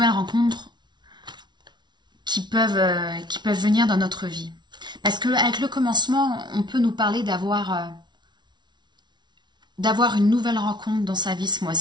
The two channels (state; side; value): late; left; 0.21 ms